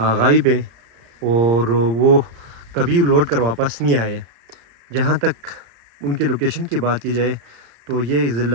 ہے اور وہ کبھی لوٹ کر واپس نہیں آئے. جہاں تک ان کے لوکیشن کی بات کی جائے تو یہ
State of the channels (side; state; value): left; late; 35 ms